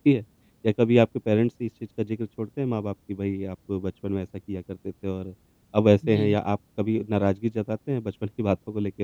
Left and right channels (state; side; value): identical; both; correlation 1.00